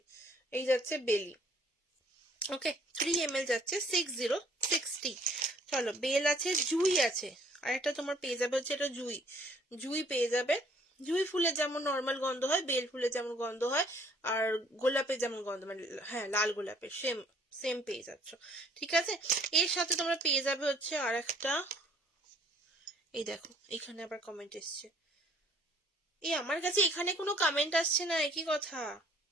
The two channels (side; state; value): both; normal; correlation 0.59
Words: এই যাচ্ছে বেলি, ওকে। 3 ml যাচ্ছে 6060। চলো, বেল আছে, জুই আছে, আর একটা তোমার পেয়ে যাবে হচ্ছে এটা জুই। জুই পেয়ে যাবে। জুই ফুলের যেমন নর্মাল গন্ধ হয়, বেল ফুলের যেমন গন্ধ হয়, আর গোলাপের যেমন গন্ধ, মানে হ্যাঁ লাল গোলাপের সেম সেম পেয়ে যাচ্ছ, ঠিক আছে। এর সাথে তোমরা পেয়ে যাবে হচ্ছে আর একটা, এই দেখো এখানে আবার কমেন্ট এসছে। আমার কাছে এখানে কোনো কমেন্ট আসছে না, একই কথা।